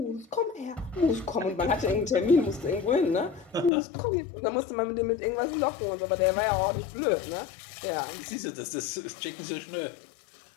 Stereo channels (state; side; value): drops out; right; at 3.7 s